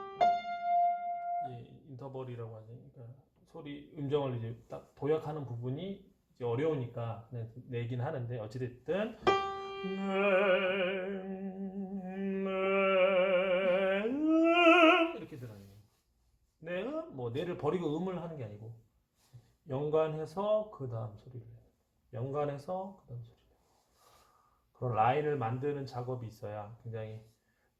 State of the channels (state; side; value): identical; both; correlation 1.00